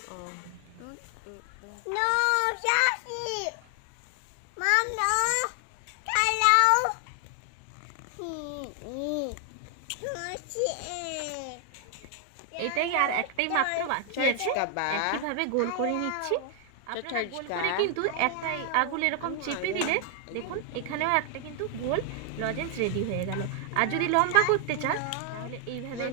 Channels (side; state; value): both; different; correlation 0.00